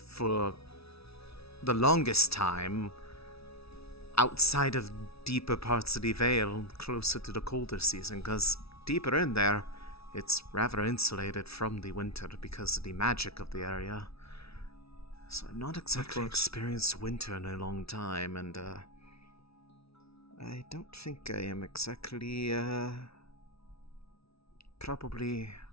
the longest time, outside of deeper parts of the Vale, closer to the colder season, because deeper in there, it's rather insulated from the winter because of the magic of the area. So I've not exactly experienced winter in a long time, and I don't think I am exactly, probably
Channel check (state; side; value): late; right; 0.77 ms